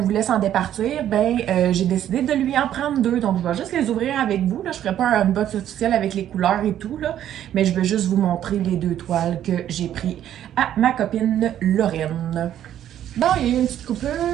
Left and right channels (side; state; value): left; quieter; 11.1 dB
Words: voulait s'en départir, ben j'ai décidé de lui en prendre deux. Donc, je vais juste les ouvrir avec vous. Là. Je ne ferai pas un unbox officiel avec les couleurs et tout, là, mais je vais juste vous montrer les deux toiles que j'ai pris à ma copine Lorraine. Bon, il y a eu une petite coupure,